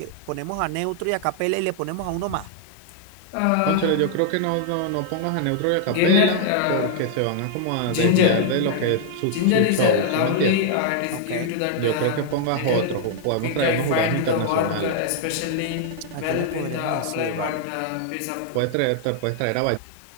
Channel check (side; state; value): both; different; correlation 0.00